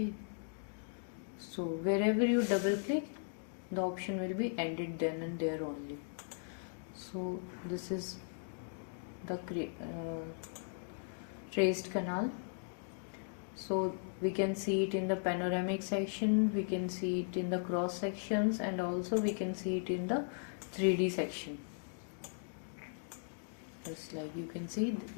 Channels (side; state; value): right; silent; digital silence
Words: so wherever you double click, the option will be ended then and there only. So this is the traced canal. So we can see it in the panoramic section, we can see it in the cross sections, and also we can see it in the 3D section. Just like you can see,